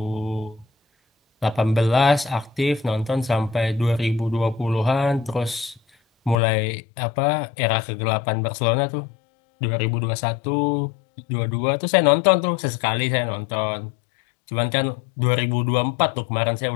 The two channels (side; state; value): right; drops out; at 6.4 s